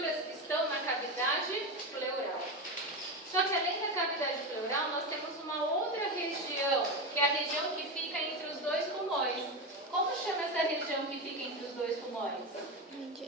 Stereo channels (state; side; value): normal; both; correlation 0.17